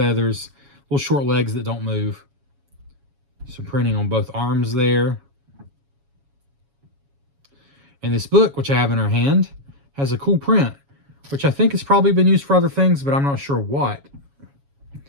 Little short legs that don't move. Some printing on both arms there. And this book, which I have in her hand, has a cool print, which I think has probably been used for other things, but I'm not sure what.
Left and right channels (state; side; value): late; left; 7.2 ms